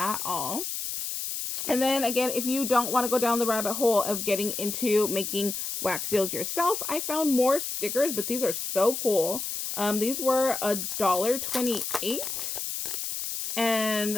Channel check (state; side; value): noise; left; hiss, 4 dB below the sound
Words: all. And then again, if you don't want to go down the rabbit hole of getting into making wax seals yourself, I found more stickers, but these are so cool. These were $1.28.